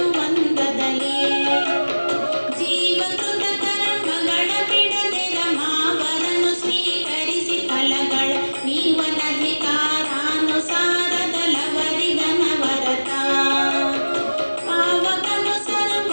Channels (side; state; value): both; inverted; correlation -1.00